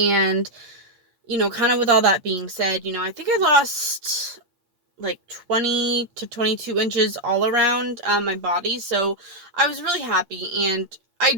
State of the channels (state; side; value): late; left; 8.6 ms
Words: kind of with all that being said, I think I lost, like, 20 to 22 inches all around my body. So I was really happy, and